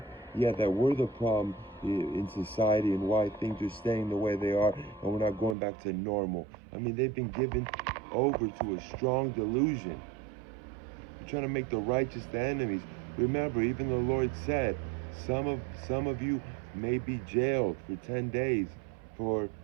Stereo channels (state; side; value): drops out; left; at 5.6 s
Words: we're the problem in society and why things are staying the way they are and we're not going back to normal. I mean, they've been given over to a strong delusion. They're trying to make the righteous the enemies. Remember, even the Lord said, some of you may be jailed for 10 days for